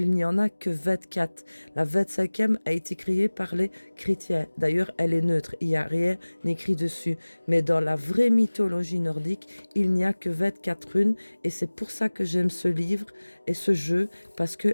n'y en a que 24. La 25e a été créée par les chrétiens. D'ailleurs, elle est neutre, il n'y a rien écrit dessus. Mais dans la vraie mythologie nordique, il n'y a que 24 runes. Et c'est pour ça que j'aime ce livre et ce jeu, parce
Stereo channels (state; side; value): inverted; both; correlation -1.00